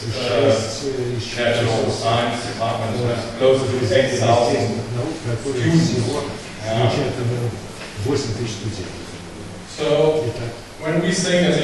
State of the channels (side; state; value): both; identical; correlation 1.00